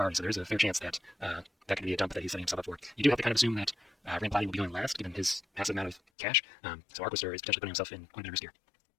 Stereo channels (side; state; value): right; drops out; at 6.0 s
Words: so there is a fair chance that that could be a dump that he's setting himself up for. You do have to kind of assume that Rand Blatty will be going last, given his massive amount of cash, so Arcster is potentially putting himself in quite a bit of risk here.